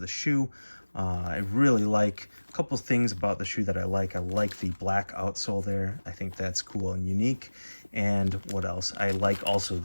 the shoe. I really like a couple things about the shoe that I like. I like the black outsole there. I think that's cool and unique. And what else? I like also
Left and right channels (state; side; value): inverted; both; correlation -1.00